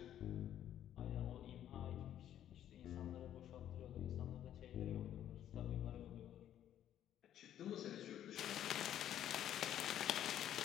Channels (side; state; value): right; quieter; 11.0 dB